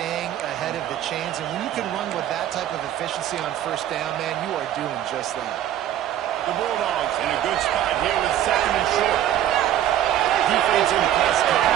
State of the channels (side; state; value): left; quieter; 11.7 dB